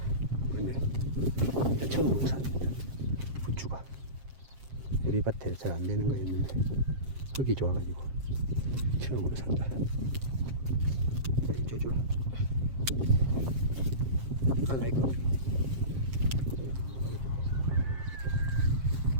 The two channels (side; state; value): left; late; 7.5 ms